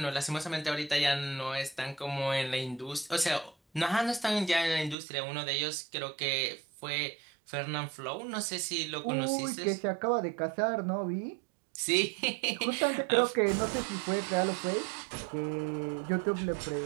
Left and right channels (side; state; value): left; drops out; at 5.0 s